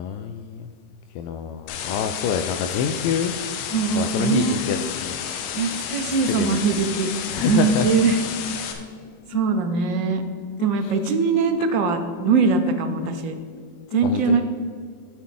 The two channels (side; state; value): right; late; 23 ms